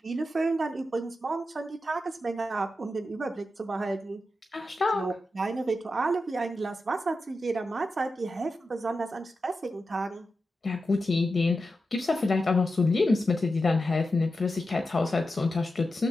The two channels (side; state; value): both; normal; correlation 0.90